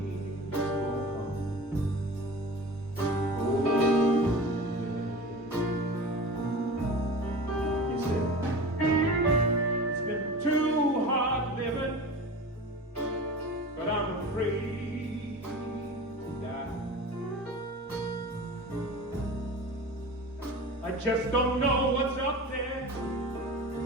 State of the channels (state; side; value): normal; both; correlation 0.35